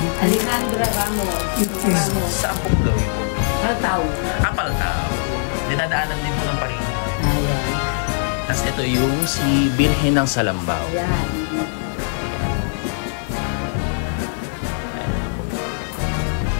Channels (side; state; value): right; silent; digital silence